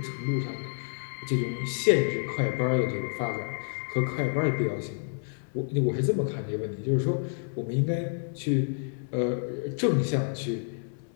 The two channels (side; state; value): right; silent; 59 dB below the other